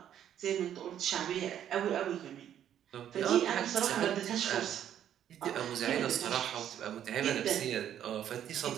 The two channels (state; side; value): quieter; left; 10.3 dB